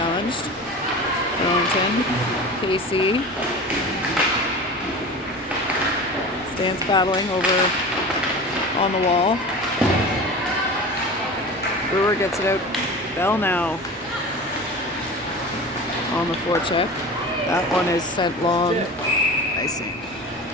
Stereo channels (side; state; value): both; normal; correlation 0.33